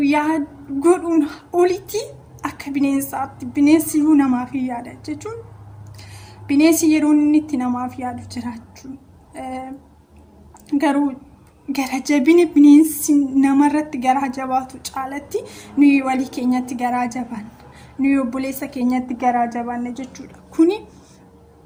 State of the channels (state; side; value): identical; both; correlation 1.00